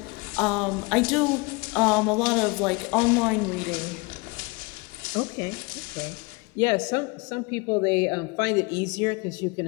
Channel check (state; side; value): quieter; right; 27.2 dB